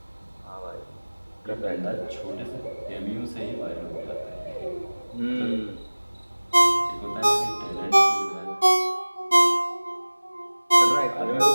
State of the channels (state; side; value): inverted; both; correlation -1.00